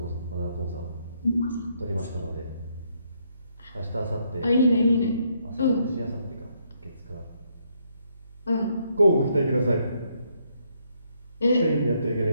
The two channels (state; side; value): inverted; both; correlation -0.73